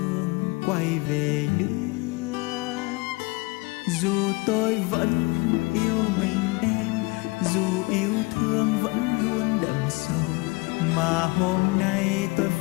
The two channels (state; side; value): quieter; right; 25.5 dB